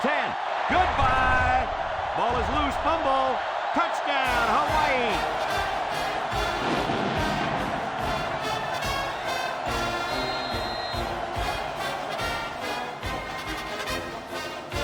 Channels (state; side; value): identical; both; correlation 1.00